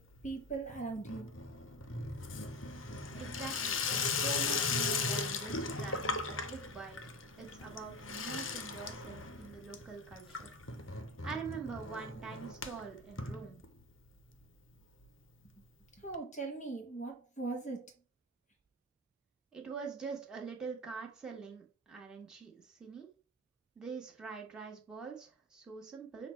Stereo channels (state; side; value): normal; both; correlation 0.24